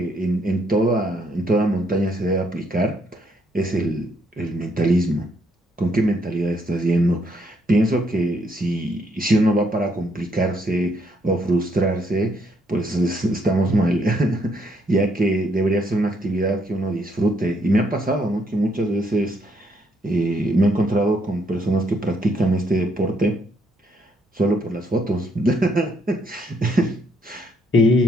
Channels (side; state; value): both; normal; correlation 0.72